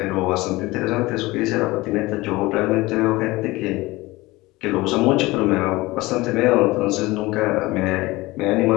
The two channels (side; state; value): right; quieter; 20.7 dB